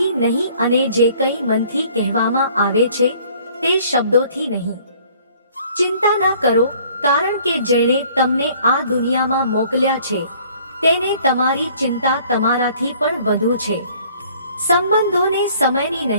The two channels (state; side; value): inverted; both; correlation -0.57